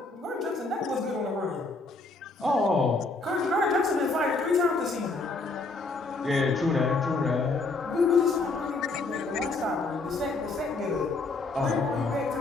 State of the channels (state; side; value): quieter; right; 3.5 dB